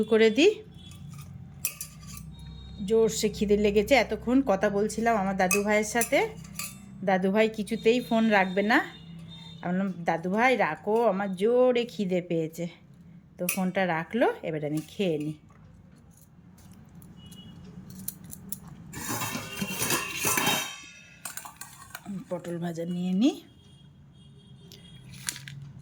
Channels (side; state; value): both; identical; correlation 1.00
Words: করে দিই। জোরসে খিদে লেগেছে, এতক্ষণ কথা বলছিলাম আমার দাদু ভাইয়ের সাথে। দাদু ভাই কিছুতেই ফোন রাখবে না। আমি বললাম দাদু ভাই রাখো, আমার জোরে খিদে পেয়েছে। তো ফোনটা রাখলো, এবার আমি খেয়ে নিই। পটল ভাজা নিয়ে নিই,